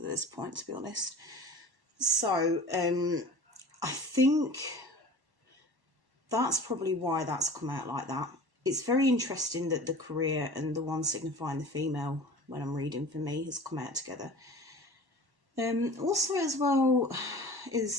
point, to be honest. So I think that's probably why that's come out like that. It's very interesting that the career and the one signifying the female, when I'm reading for me, has come out together. Also as well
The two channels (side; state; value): left; late; 1.1 ms